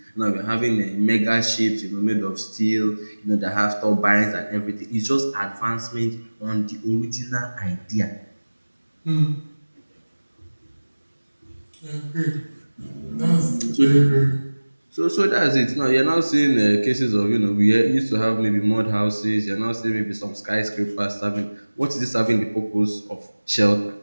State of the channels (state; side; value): inverted; both; correlation -1.00